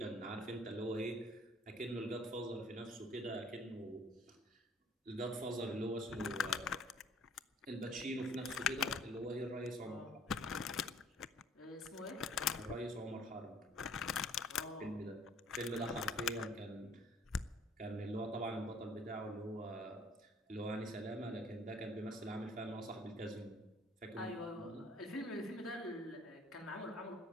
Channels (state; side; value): normal; both; correlation 0.57